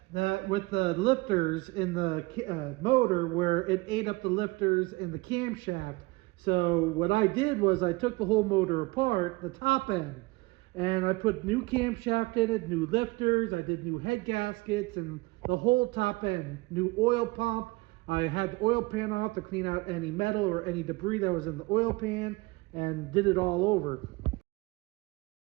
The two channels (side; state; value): left; quieter; 23.7 dB